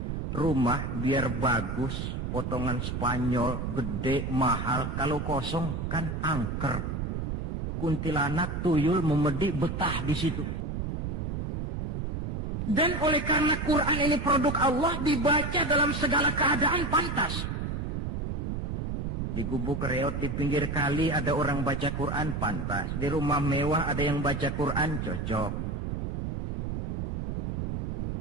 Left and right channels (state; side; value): noise; right; rumble, 2 dB below the sound